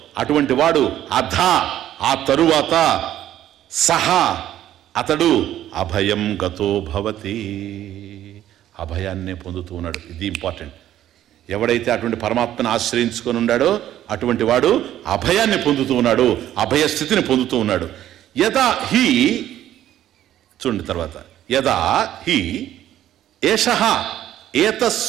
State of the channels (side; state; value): left; quieter; 12.2 dB